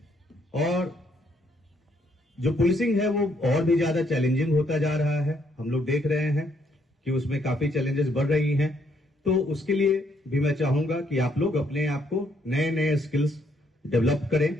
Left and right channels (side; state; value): both; normal; correlation 0.71